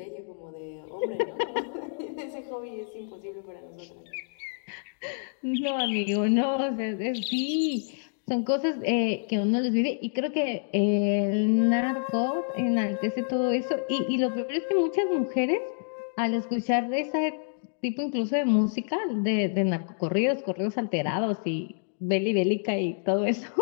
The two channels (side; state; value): right; silent; digital silence